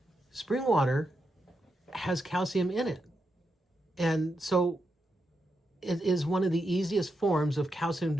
Spring water has calcium in it. And so it is one of the easiest forms of calcium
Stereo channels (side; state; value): both; normal; correlation 0.85